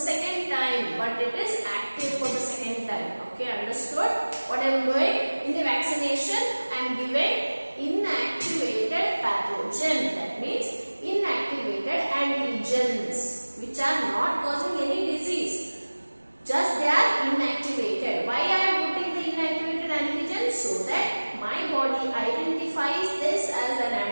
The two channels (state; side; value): inverted; both; correlation -1.00